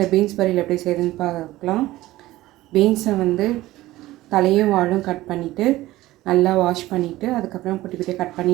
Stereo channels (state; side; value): quieter; left; 16.8 dB